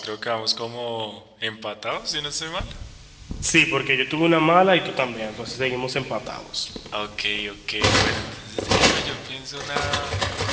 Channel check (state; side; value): identical; both; correlation 1.00